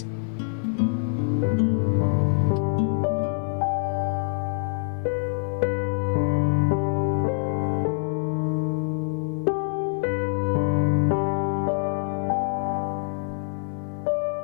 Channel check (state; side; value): silent; right; 62 dB below the other